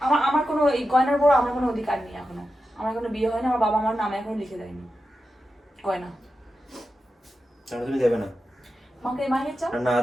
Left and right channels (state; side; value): normal; both; correlation 0.90